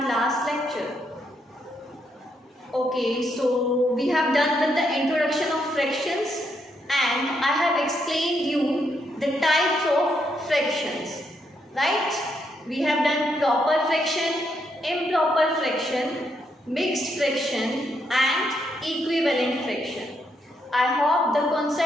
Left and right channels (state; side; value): normal; both; correlation 0.77